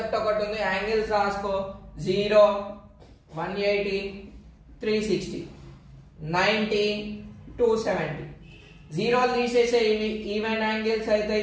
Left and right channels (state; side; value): identical; both; correlation 1.00